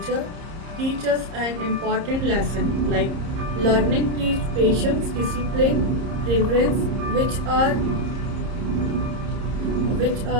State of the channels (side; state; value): left; late; 30 ms